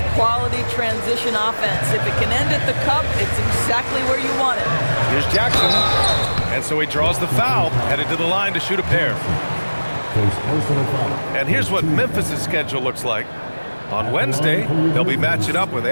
quality transition offense. If it can end at the cup, it's exactly where you want it. Here's Jackson. And so he draws the foul, headed to the line to shoot a pair. And here's what Memphis' schedule looks like. On Wednesday, they'll be matching up with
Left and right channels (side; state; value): both; inverted; correlation -1.00